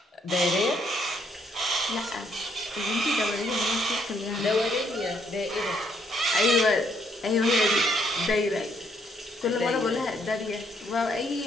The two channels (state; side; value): normal; both; correlation 0.71